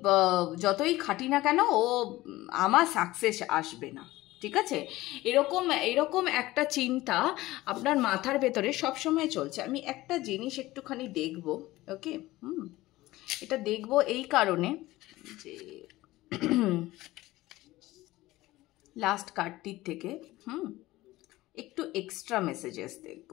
যতই খাটি না কেন ও আমার সাকসেস আসবে না, ঠিক আছে? এরকম একটা চিন্তা আপনার মাথার ভেতরে সবসময় চলছে। আমি একটা জিনিস একটুখানি দেখব, ওকে? এটা দেখব এই কারণে যে লাস্ট কার্ডটির থেকে একটু এক্সট্রা মেসেজেস দেখব,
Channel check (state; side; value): quieter; right; 17.8 dB